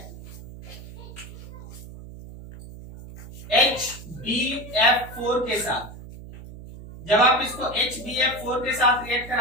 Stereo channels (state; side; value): noise; right; hum, 14 dB below the sound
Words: HbF4 के साथ। जब आप इसको HbF4 के साथ रिएक्ट